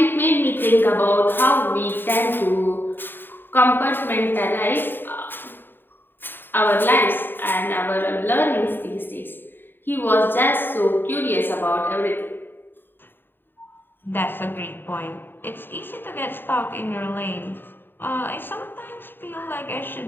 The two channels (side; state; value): right; late; 0.096 ms